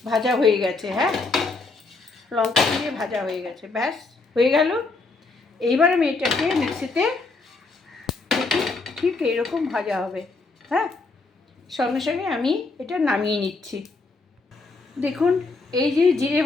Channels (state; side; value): quieter; right; 3.8 dB